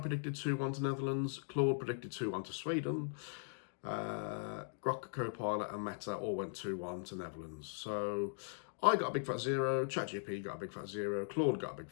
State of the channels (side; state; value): right; silent; digital silence